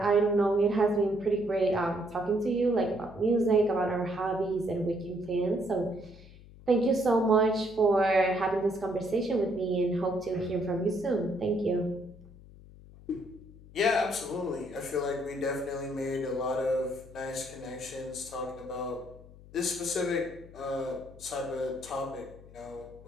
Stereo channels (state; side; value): noise; left; hum, 20 dB below the sound